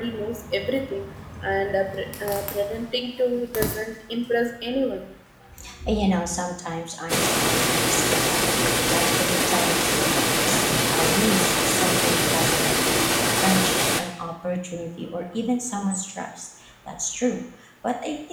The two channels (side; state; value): both; identical; correlation 1.00